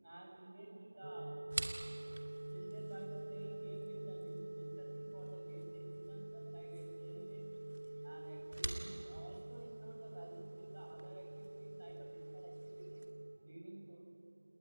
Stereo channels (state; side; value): inverted; both; correlation -1.00